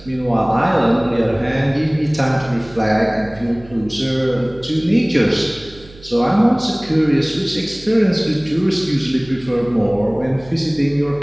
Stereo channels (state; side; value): noise; right; hum, 22 dB below the sound